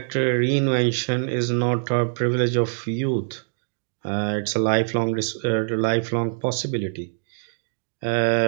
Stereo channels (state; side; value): silent; left; digital silence